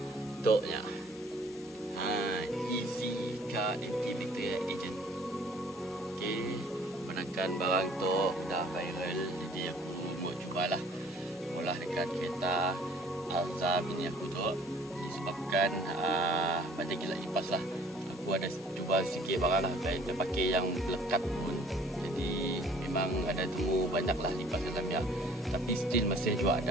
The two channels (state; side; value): normal; both; correlation 0.55